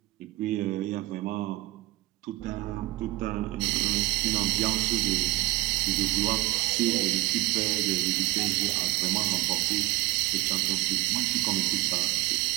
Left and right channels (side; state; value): left; quieter; 19.3 dB